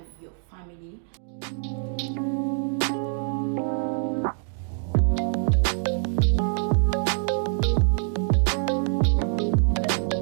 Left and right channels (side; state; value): left; silent; 58 dB below the other